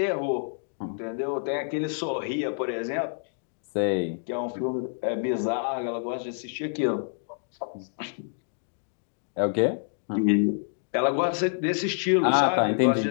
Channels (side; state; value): right; silent; digital silence